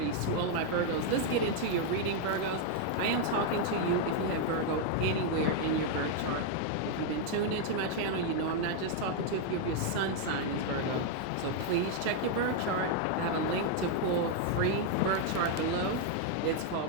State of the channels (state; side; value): different; both; correlation 0.00